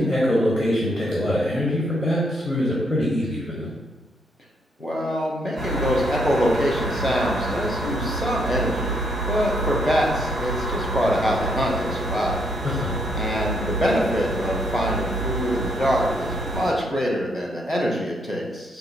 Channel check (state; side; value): normal; both; correlation 0.73